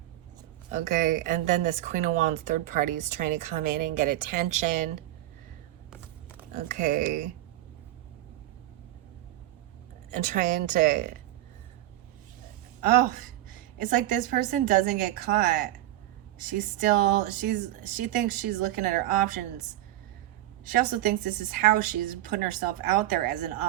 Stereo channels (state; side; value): quieter; left; 14.6 dB